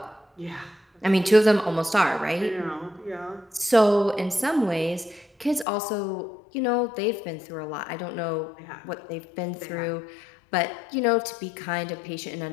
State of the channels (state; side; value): drops out; right; at 5.7 s